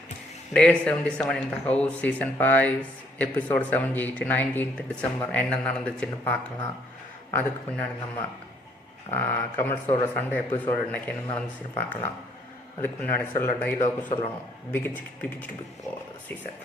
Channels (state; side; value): normal; both; correlation 0.66